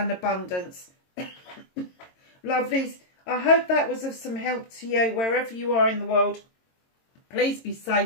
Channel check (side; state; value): right; late; 22 ms